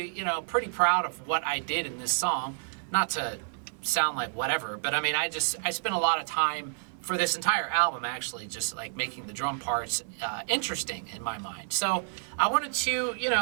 pretty proud of what I did in this song. Not to sound like whatever, but I mean, I spent a lot of time for this entire album actually just like making the drum parts interesting in my mind. So I wanted to,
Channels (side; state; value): left; silent; 58 dB below the other